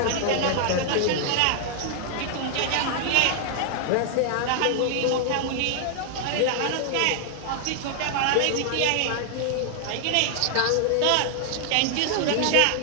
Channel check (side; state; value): both; different; correlation 0.00